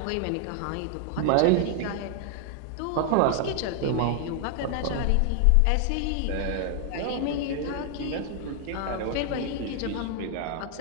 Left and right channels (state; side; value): different; both; correlation 0.00